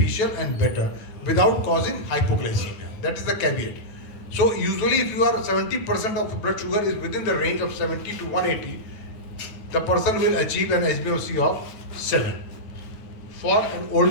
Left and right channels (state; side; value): late; right; 9.2 ms